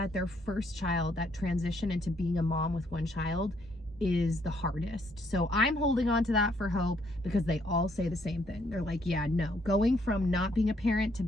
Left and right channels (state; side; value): normal; both; correlation 0.70